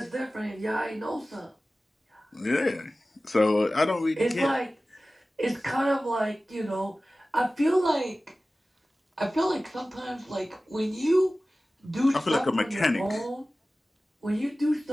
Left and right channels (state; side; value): normal; both; correlation 0.96